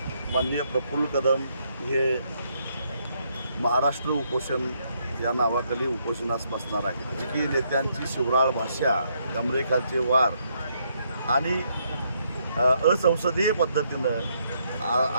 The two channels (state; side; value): inverted; both; correlation -0.74